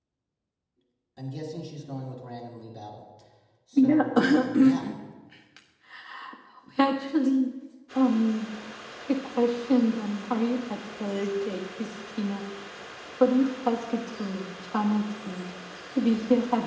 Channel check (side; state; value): both; identical; correlation 1.00